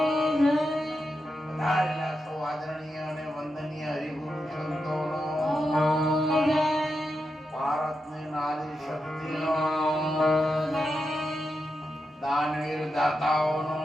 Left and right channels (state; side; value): normal; both; correlation 0.87